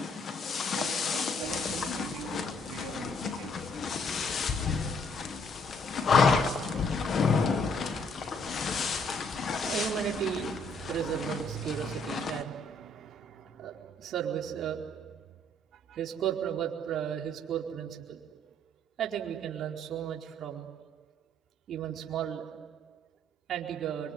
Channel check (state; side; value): normal; both; correlation 0.66